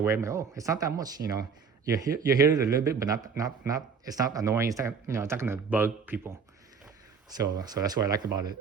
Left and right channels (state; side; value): quieter; left; 5.8 dB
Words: I'm like, oh, it's not that much. You hear it a little bit, but not. It's not annoying. It's not it's not gonna bug people. So that's what I like about